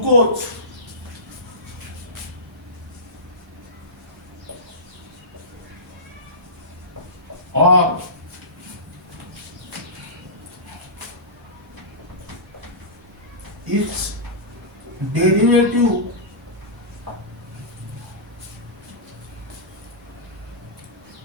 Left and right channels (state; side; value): normal; both; correlation -0.19